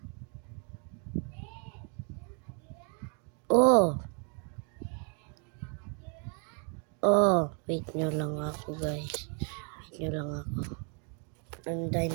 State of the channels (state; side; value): quieter; left; 39.6 dB